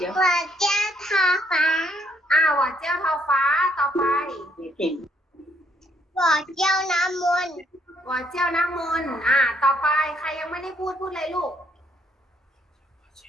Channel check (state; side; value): normal; both; correlation 0.70